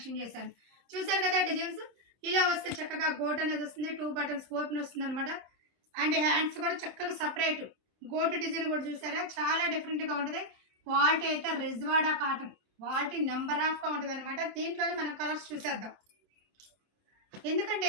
చేశాను. చూసారు కదా డిజైన్స్ ఇలా వస్తే చక్కగా గోట్ అనేది వస్తుంది, 2 బటన్స్ ఓపెన్ వస్తుంది అనమాట. అండ్ హ్యాండ్స్ కూడా చక్కగా సపరేట్ గోటు డిజైన్ కూడా చూసారా, చాలా డిఫరెంట్గా ఉంటుంది. క్వాలిటీ అయితే రిజ్వాడా కాటన్, క్వాలిటీ నెంబర్ ఆఫ్గా ఉంటుంది అనమాట. దీంట్లోనే మనం కలర్స్ చూసేద్దాం. ఎందుకంటే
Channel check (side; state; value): left; late; 27 ms